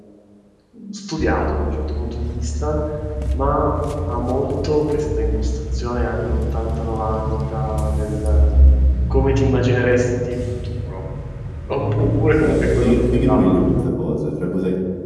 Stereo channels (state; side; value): identical; both; correlation 1.00